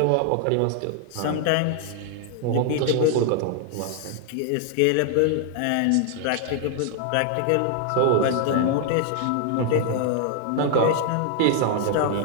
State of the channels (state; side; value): different; both; correlation 0.00